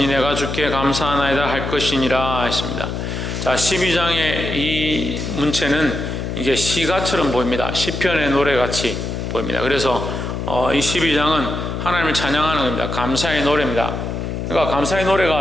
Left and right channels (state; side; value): noise; left; hum, 4 dB below the sound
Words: 내가 주께 감사하나이다 할 것이니라 했습니다. 자, 12장의 이 문체는 이게 시가처럼 보입니다. 시편의 노래같이 보입니다. 그래서 이 12장은 하나님을 찬양하는 겁니다. 감사의 노래입니다. 그러니까 감사의 노래가